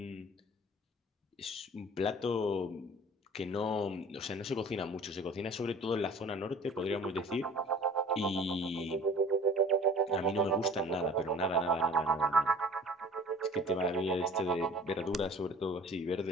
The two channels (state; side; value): normal; both; correlation 0.48